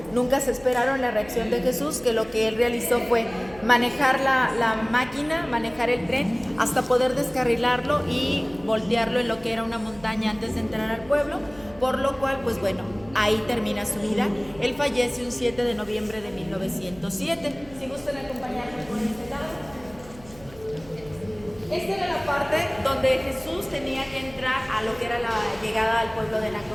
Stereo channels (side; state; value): right; noise; hum, 21 dB below the sound